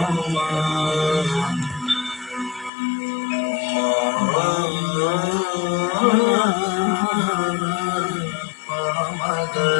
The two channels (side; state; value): right; drops out; at 2.7 s